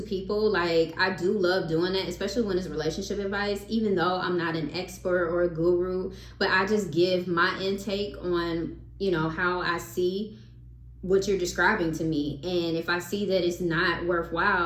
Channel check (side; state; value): both; identical; correlation 1.00